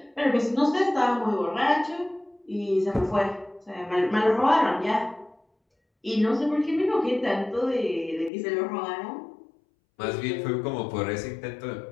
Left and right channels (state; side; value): drops out; right; at 8.3 s